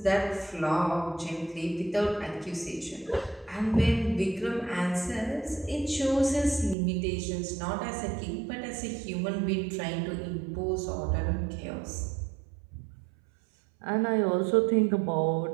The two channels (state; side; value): drops out; left; at 6.8 s